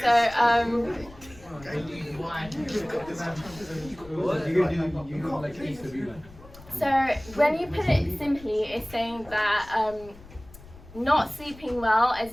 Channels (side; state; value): left; noise; rumble, 20 dB below the sound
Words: so so when you put it simply, it's saying that not sleeping well